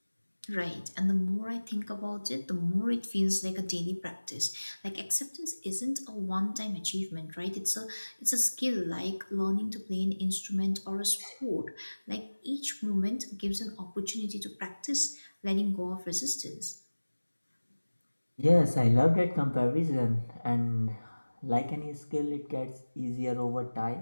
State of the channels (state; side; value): inverted; both; correlation -1.00